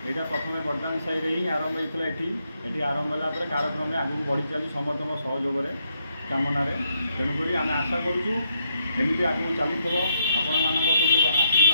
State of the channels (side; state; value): both; inverted; correlation -0.77